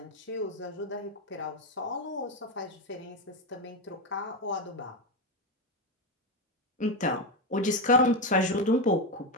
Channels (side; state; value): both; normal; correlation 0.11